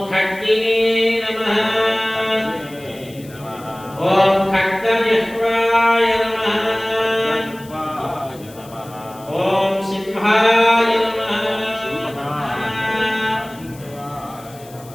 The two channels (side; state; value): left; noise; hiss, 22 dB below the sound